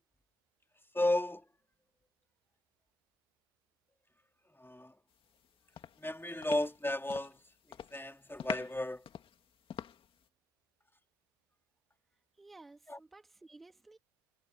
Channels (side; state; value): both; normal; correlation 0.85